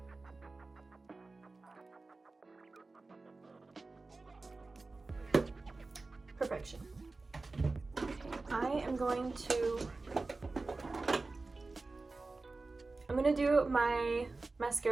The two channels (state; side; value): quieter; left; 3.6 dB